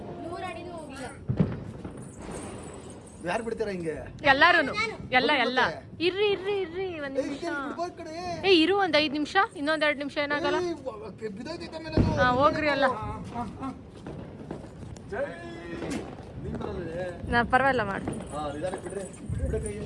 100 ಅಡಿನೂ ಹೋಗಿಲ್ಲ. ಯಾರು ಬಿಡ್ತೀರಾ ಹಿಂಗೆ? ಎಲ್ಲಾರು ಎಲ್ಲ ಇರ್ರಿ ಇರ್ರಿ ಇರ್ರಿ ಒಂದ್ ನಿಮಿಷ. ಇರು ಒಂದ್ 5 ನಿಮಿಷ. ಇನ್ನೊಂದ್ 2 ನಿಮಿಷ ಏನಾಗಲ್ಲ. ಹಾ ಹೋಗ್ರಿ ಅಲ್ಲ. ನಾ ಪರವಾಗಿಲ್ಲ ಮಾಡಿ.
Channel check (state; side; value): identical; both; correlation 1.00